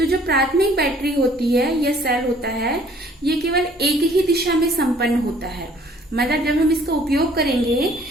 जो प्राथमिक बैटरी होती है या सेल होता है, ये केवल एक ही दिशा में संपन्न होता है। मतलब जब हम इसका उपयोग करेंगे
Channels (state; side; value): normal; both; correlation 0.58